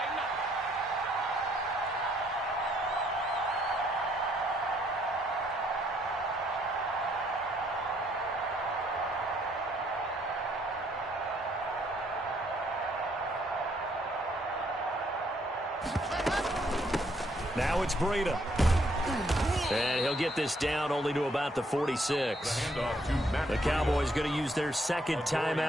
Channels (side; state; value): both; normal; correlation 0.69